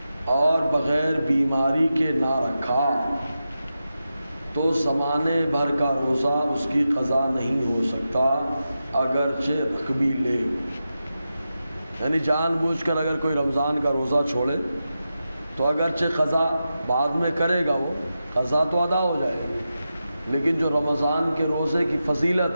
اور بغیر بیماری کے نہ رکھا تو زمانے بھر کا روزہ اس کی قضا نہیں ہو سکتا، اگرچہ رکھ بھی لے۔ یعنی جان بوجھ کر اگر کوئی رمضان کا روزہ چھوڑے تو اگرچہ قضا بعد میں کرے گا، وہ قضا تو ادا ہو جائے گی، لیکن جو رمضان کے روزے کی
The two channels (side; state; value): both; inverted; correlation -0.90